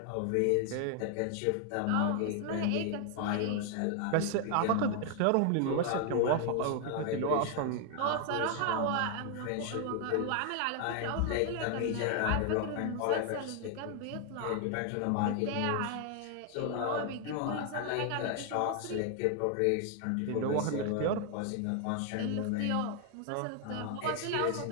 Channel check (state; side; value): different; both; correlation 0.00